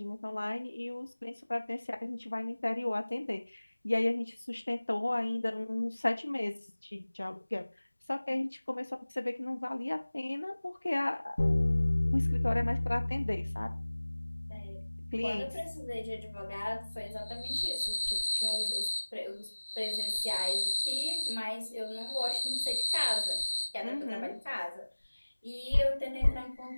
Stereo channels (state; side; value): inverted; both; correlation -1.00